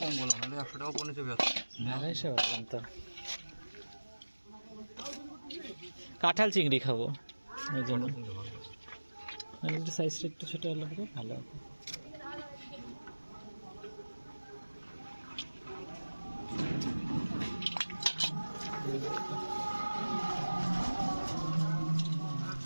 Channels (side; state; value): both; inverted; correlation -1.00